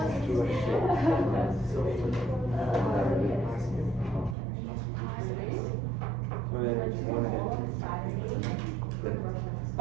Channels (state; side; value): drops out; left; at 4.4 s